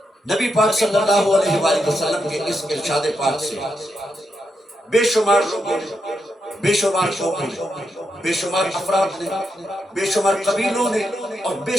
نبی پاک صلی اللہ علیہ وآلہ وسلم کے اس ارشاد پاک سے بے شمار لوگوں نے، بے شمار قوموں نے، بے شمار افراد نے، بے شمار قبیلوں نے اور بے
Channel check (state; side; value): normal; both; correlation 0.84